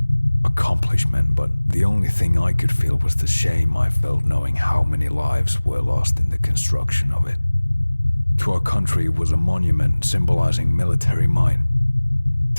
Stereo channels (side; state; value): both; inverted; correlation -1.00